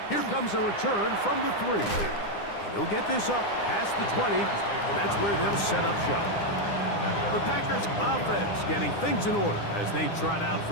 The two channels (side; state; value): right; late; 9.8 ms